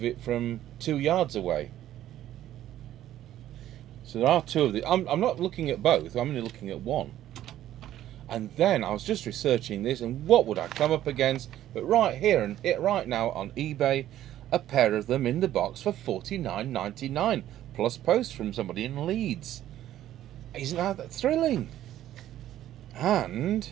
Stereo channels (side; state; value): left; quieter; 12.7 dB